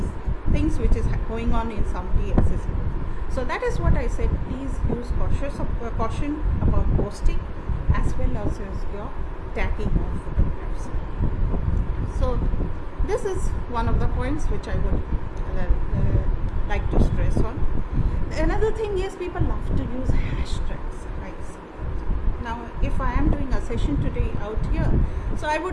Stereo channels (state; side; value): identical; both; correlation 1.00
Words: things which is going on in somebody else's life. So that is what I said. Please use caution about posting as well as your tagging of photographs. So this is one of the points which I would like to stress on. Another thing is people love to use hashtags. I see that. Now, if I am doing a session today out here, so I